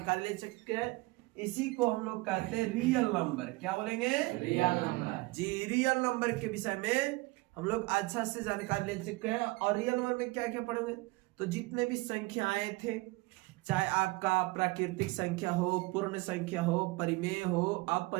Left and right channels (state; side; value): quieter; left; 23.1 dB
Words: ले चुके हैं। इसी को हम लोग कहते हैं रियल नंबर। क्या बोलेंगे? Real number. जी, रियल नंबर के विषय में हम लोग अच्छा से जानकारी ले चुके हैं। और रियल नंबर में क्या क्या पढ़ेंगे, तो जितने भी संख्याएं थे, चाहे आपका प्राकृतिक संख्या हो, पूर्ण संख्या हो, परिमेय हो,